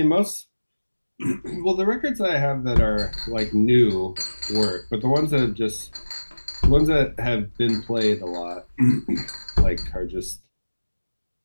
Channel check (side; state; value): both; inverted; correlation -1.00